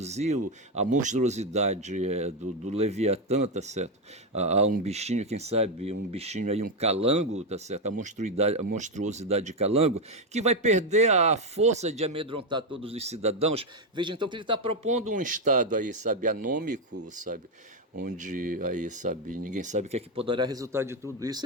a monstruosidade do Leviatã, tá certo? A um bichinho, quem sabe, um bichinho aí, um calango, tá certo? A monstruosidade de calango, que vai perder a força de amedrontar todos os cidadãos. Veja, então, que ele está propondo um Estado aí, sabe, anômico, sabe? Onde aí, sabe, ninguém sabe o que é que poderá resultar de tudo isso,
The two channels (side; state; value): both; normal; correlation 0.06